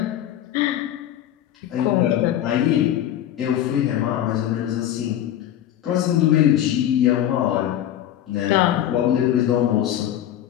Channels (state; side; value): quieter; right; 11.6 dB